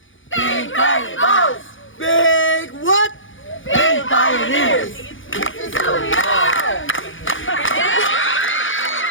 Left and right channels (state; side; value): late; right; 0.57 ms